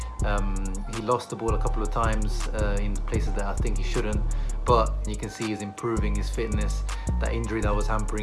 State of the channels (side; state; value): both; identical; correlation 1.00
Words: He lost the ball a couple of times in places that I think he shouldn't, but you can see he's improving his fitness. That injury that was